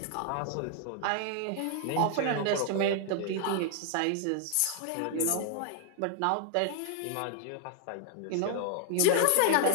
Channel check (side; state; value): both; different; correlation 0.00